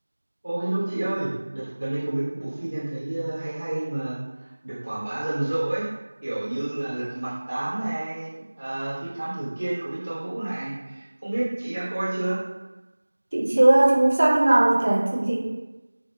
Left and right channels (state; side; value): inverted; both; correlation -1.00